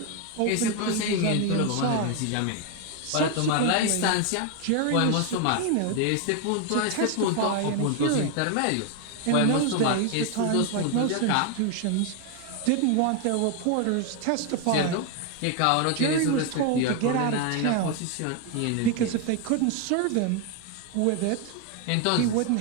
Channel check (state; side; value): different; both; correlation 0.01